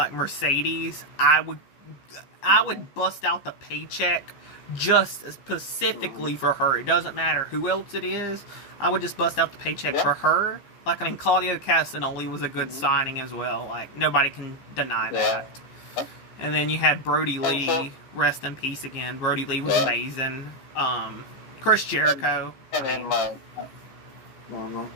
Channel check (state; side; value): late; right; 15 ms